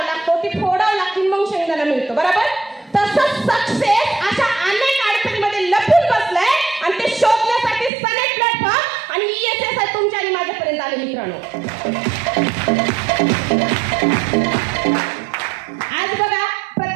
लागतो, ती फोडावं लागते, मग शेंगदाणा मिळतो, बरोबर? तसंच सक्सेस अशा अनेक अडचणीमध्ये लपून बसलंय आणि ते शोधण्यासाठी सनेट प्लॅटफॉर्म आणि ESS तुमच्या आणि माझ्यापर्यंत आले. मित्रांनो, आज बघा,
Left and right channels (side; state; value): left; drops out; at 7.9 s